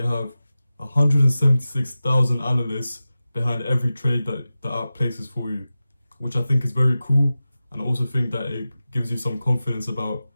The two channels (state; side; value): inverted; both; correlation -0.94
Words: have 176,000 analysts behind every trade that the app places for you, which I think is very cool, and I also think that it gives you some confidence about